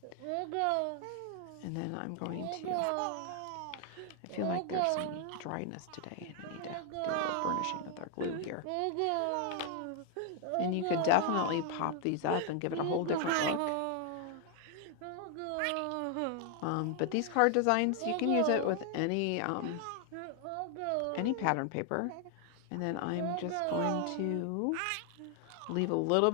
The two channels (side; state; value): both; different; correlation 0.00